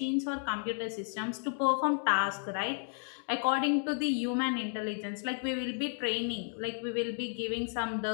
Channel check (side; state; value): right; silent; 55 dB below the other